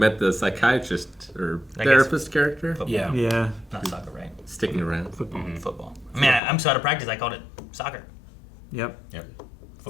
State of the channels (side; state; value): right; drops out; at 6.4 s